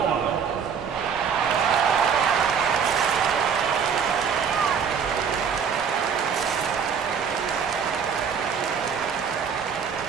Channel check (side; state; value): left; quieter; 6.8 dB